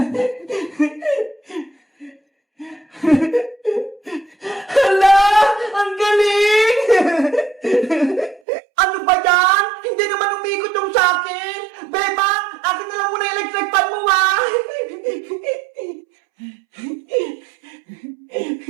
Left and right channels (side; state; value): left; drops out; at 8.4 s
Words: Hala! Ang galing! Ano ba yan? Hindi naman umikot yung sa'kin! Bebang! Akin na lang muna yung electric fan mo, ha?